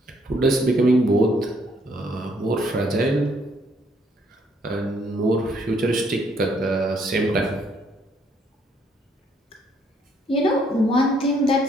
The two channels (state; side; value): normal; both; correlation 0.68